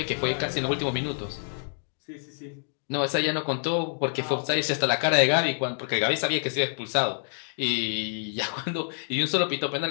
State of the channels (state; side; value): silent; right; digital silence